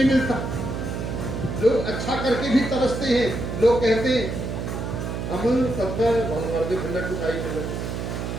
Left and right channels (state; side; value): noise; right; hum, 4 dB below the sound